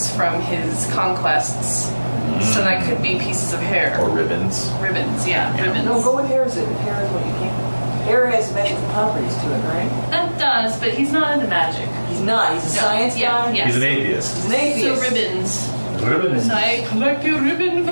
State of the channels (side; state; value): both; inverted; correlation -1.00